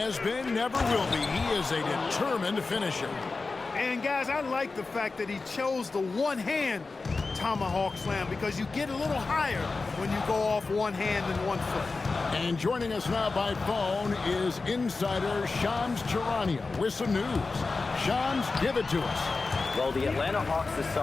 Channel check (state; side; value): quieter; right; 3.9 dB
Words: been, never will be. He is a determined finisher. And guys, I like the fact that he chose the one-hand tomahawk slam because you get a little higher when you go off one hand and one foot. And joining us now by phone is insider Shams Charania with some news. Shams, give it to us. Well, the Atlanta Hawks this